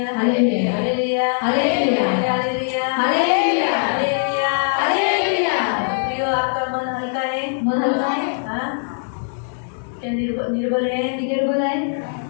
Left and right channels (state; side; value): silent; right; 65 dB below the other